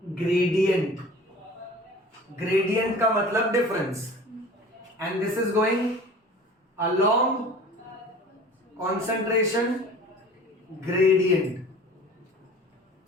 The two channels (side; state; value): both; normal; correlation 0.43